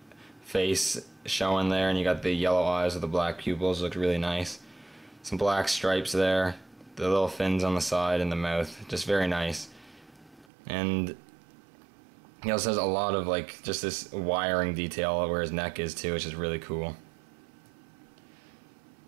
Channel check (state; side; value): drops out; left; at 10.5 s